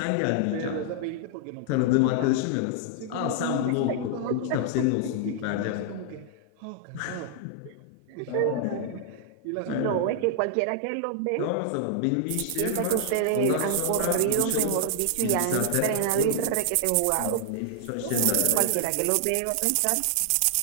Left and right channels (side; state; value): both; different; correlation -0.01